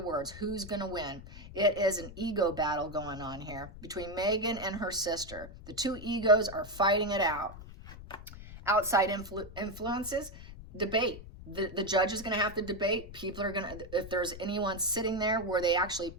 words. Who's going to win? It is an ego battle going on here between Meghan and her sister. The two egos are fighting it out. Outside influences, debate. The judge is going to have to debate. People are going to, if there's anyone sitting there where they actually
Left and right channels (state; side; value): noise; left; rumble, 14 dB below the sound